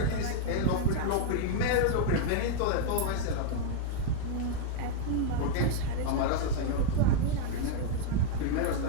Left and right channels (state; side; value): different; both; correlation -0.01